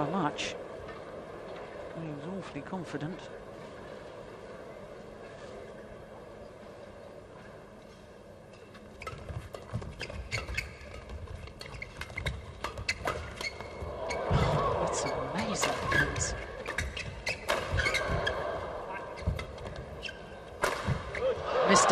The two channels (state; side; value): identical; both; correlation 1.00